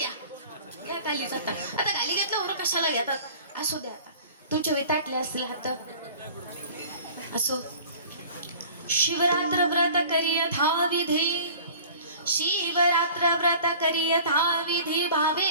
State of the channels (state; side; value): inverted; both; correlation -0.45